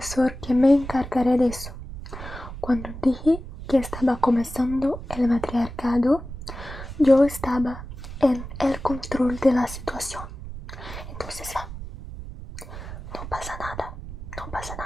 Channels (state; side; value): noise; right; rumble, 11 dB below the sound